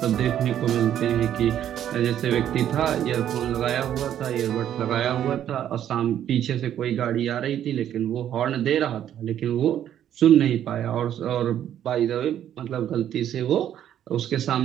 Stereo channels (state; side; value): quieter; left; 10.6 dB